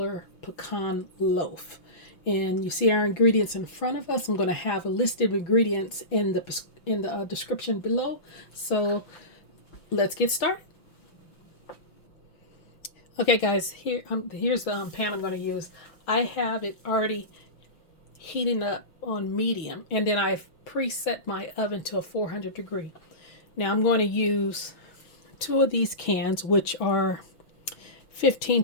pecan loaf. And you see our ingredients in front of us. I'm going to have a list of ingredients in the description below. So let's get started. Okay guys, here's the pan I'm going to use. I have it already heating up on medium, and then I've preset my oven to a 400 degree. Now I'm going to use two of these cans, which are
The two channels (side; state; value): right; late; 5.9 ms